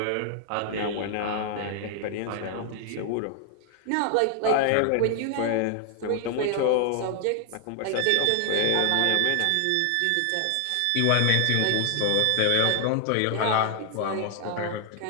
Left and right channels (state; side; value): different; both; correlation 0.00